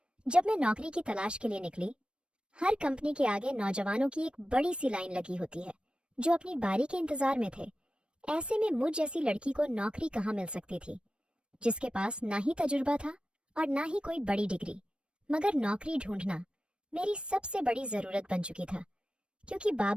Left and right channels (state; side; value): late; left; 0.057 ms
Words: जब मैं नौकरी की तलाश के लिए निकली। हर कंपनी के आगे नौजवानों की एक बड़ी सी लाइन लगी होती है जो अपनी बारी के इंतजार में थे। ऐसे में मुझ जैसी लड़की को नौकरी कहाँ मिल सकती थी, जिसके पास ना ही तजुर्बा था और ना ही कोई बड़ी डिग्री। मगर नौकरी ढूंढना मेरी सबसे बड़ी जरूरत बन चुकी था, क्योंकि